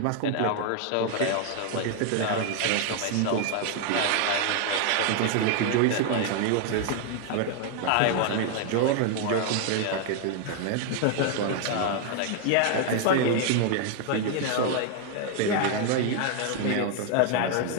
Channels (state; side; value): different; both; correlation 0.00